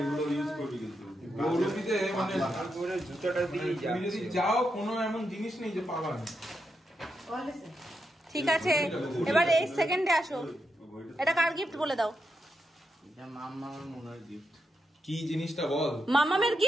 গৌরবীতে মানে জুতোটা দিয়ে তুমি যদি যাও, কোনো এমন জিনিস নেই যে পাবা না। ঠিক আছে, এবার এই সেকেন্ডে আসো। এটা কার গিফট বলে দাও? এটা মাম্মামের মনে হয় গিফট। কি জিনিসটা বল। মামামের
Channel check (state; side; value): normal; both; correlation 0.84